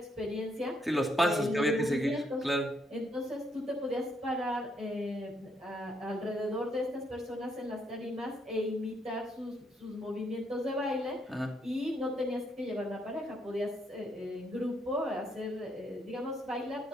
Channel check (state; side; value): normal; both; correlation 0.74